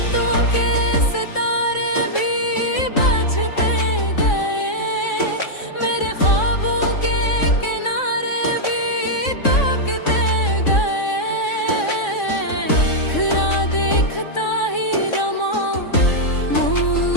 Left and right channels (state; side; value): late; right; 3.6 ms